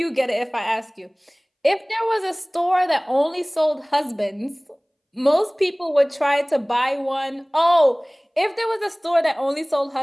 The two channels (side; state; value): both; identical; correlation 1.00